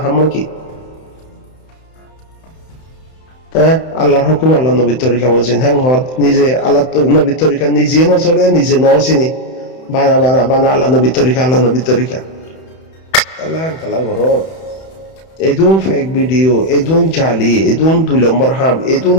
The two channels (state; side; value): late; right; 31 ms